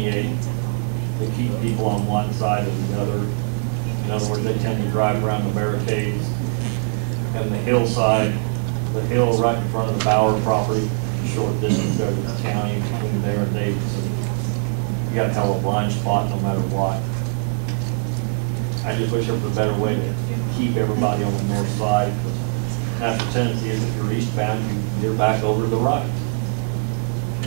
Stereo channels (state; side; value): silent; left; 64 dB below the other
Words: to keep people on one side or the other. In other words, they tend to drive around the barricades. And the hillside, the hill right in front of the Bauer property, short distance there to the county between there and Davidson. You got to have a blind spot no matter what. I just wish there was a better way to keep everybody on the north side. Natural tendency is if you're eastbound, you're back over to the right.